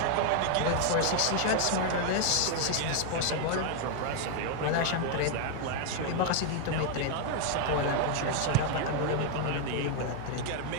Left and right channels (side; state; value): both; different; correlation 0.00